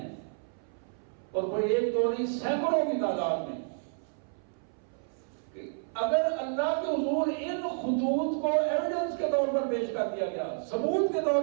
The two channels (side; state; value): left; silent; 58 dB below the other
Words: اور کوئی 1 2 نہیں، سینکڑوں کی تعداد میں، اگر اللہ کے حضور ان خطوط کو ایویڈنس کے طور پر پیش کر دیا گیا، ثبوت کے طور